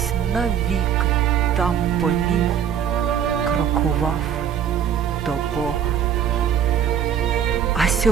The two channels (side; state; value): left; quieter; 8.5 dB